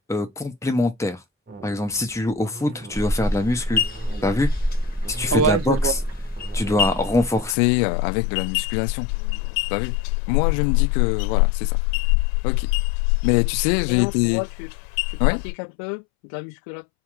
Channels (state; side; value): drops out; right; at 7.6 s